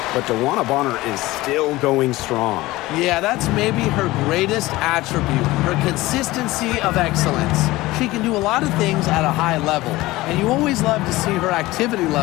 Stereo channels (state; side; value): quieter; right; 18.8 dB